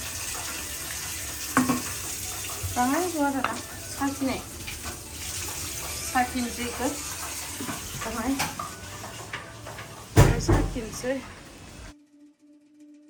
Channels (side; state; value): both; identical; correlation 1.00